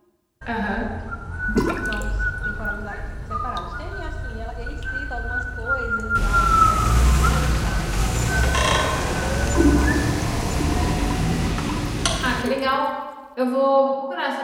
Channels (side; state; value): both; identical; correlation 1.00